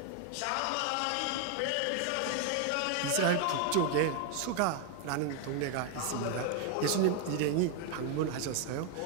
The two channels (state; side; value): different; both; correlation 0.01